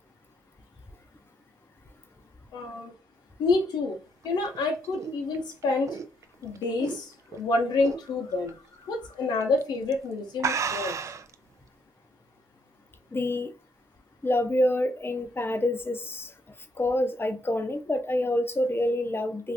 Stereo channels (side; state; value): both; normal; correlation 0.73